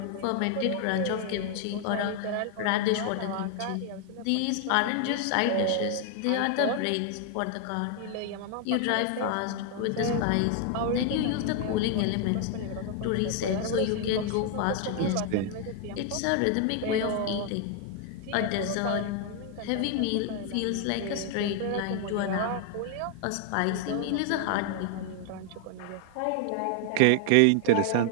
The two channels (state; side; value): different; both; correlation 0.00